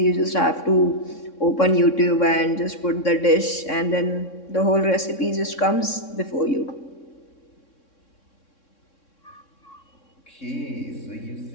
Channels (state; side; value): late; right; 3.6 ms